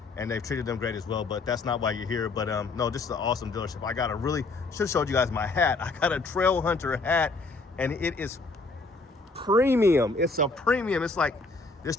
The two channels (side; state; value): right; quieter; 3.6 dB